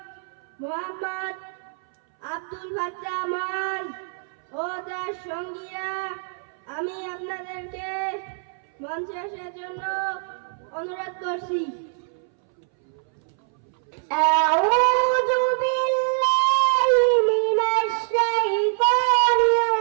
মোহাম্মদ আব্দুল ফাত্তাহ মাজ ও তার সঙ্গীরা। আমি আপনাদেরকে মঞ্চে আসার জন্য অনুরোধ করছি। আউযু বিল্লাহি মিনাশ শাইতানির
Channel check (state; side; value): silent; left; 61 dB below the other